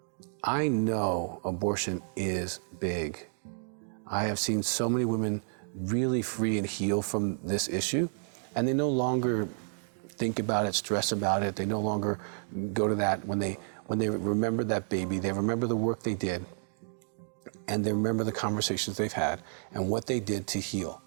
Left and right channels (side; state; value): left; silent; digital silence